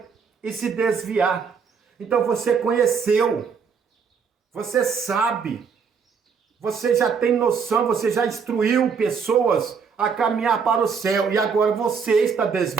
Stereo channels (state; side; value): quieter; left; 6.0 dB